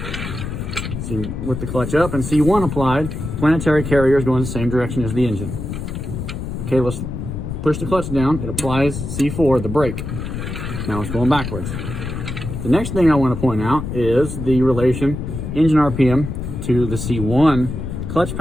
See, with the clutch up and C1 applied, planetary carrier is going the same direction as the engine. Okay, let's push the clutch down. It applies C4, the brake. Now it's going backwards. The next thing I want to point out is the relation engine RPM to the C1 clutch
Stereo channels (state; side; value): noise; left; rumble, 6 dB below the sound